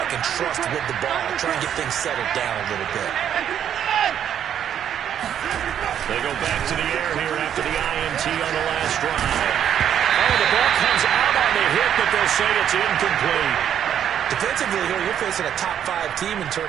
can trust with the ball, try and get things settled down a little bit. They go back to the air here after the INT on the last drive. Oh, the ball comes out on the hit, but they'll say it's incomplete. Defensively here, you're facing a top 5 team in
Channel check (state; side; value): quieter; left; 9.5 dB